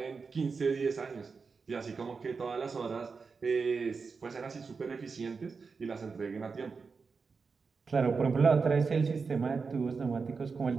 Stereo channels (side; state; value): left; quieter; 4.9 dB